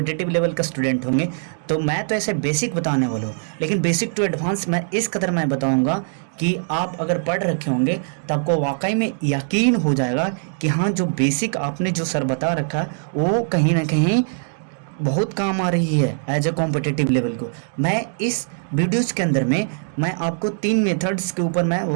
लेवल का स्टूडेंट होंगे, तो मैं तो ऐसे बेसिक बताने वाला हूँ, लेकिन बेसिक टू एडवांस मैं इस कदर मैं बताऊँगा कि आप अगर पढ़ रखे होंगे तो आपको वाकई में यकीन हो जाएगा कि हाँ, जो बेसिक आपने जो सर बता रखा है वो कहीं ना कहीं बहुत काम आ रही है एज ए कॉम्पिटिटिव लेवल को। मैं इस वीडियोज़ के अंदर में मैं आपको 3 मेथड्स के ऊपर मैं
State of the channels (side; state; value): left; silent; digital silence